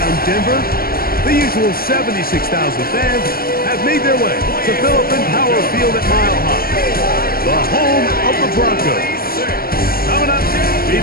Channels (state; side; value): late; right; 0.43 ms